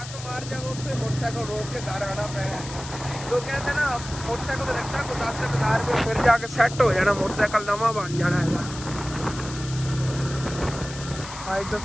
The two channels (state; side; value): noise; left; hiss, 12 dB below the sound